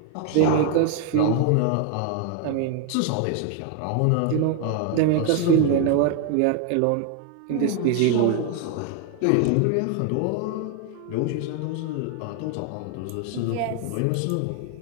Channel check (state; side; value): different; both; correlation 0.01